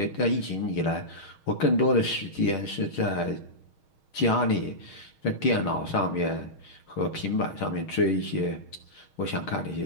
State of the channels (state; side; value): late; right; 6.4 ms